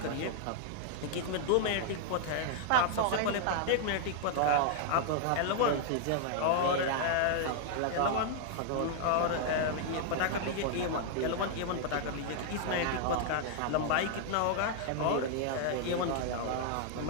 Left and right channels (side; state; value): both; different; correlation 0.00